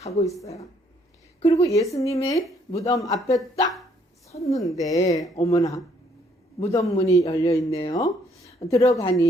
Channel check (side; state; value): both; normal; correlation 0.67